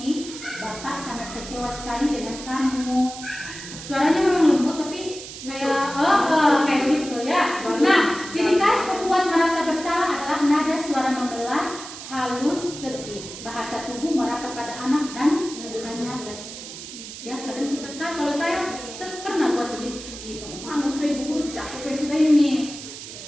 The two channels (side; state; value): right; noise; hiss, 12 dB below the sound